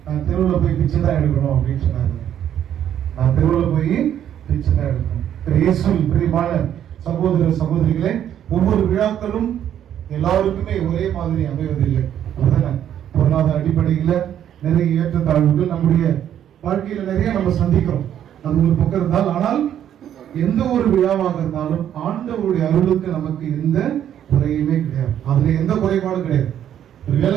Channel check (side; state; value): left; quieter; 10.2 dB